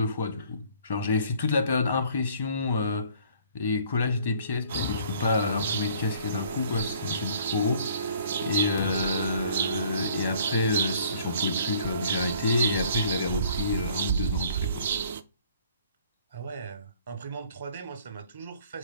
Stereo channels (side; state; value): both; inverted; correlation -0.57